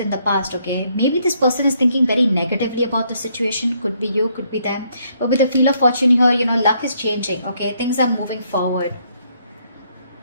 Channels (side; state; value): both; inverted; correlation -0.71